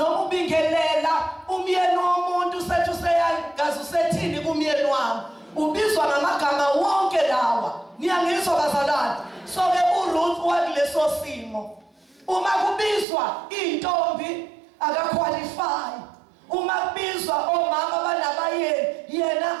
ubingelela umyeni womuntu sethu seyangazi usethini kumyeni wami. Ubizwa ngamagama wonke lawa. Niyangizwa bazalwane? So ke uRuth wakuleso simo. Uma kubizwa intombi akaqualify. Uma kubizwa omama banabayeni,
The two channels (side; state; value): left; drops out; at 13.1 s